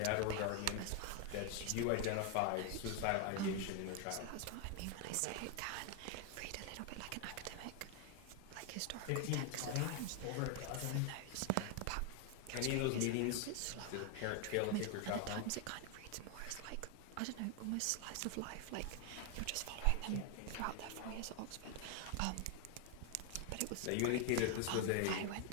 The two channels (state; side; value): different; both; correlation 0.01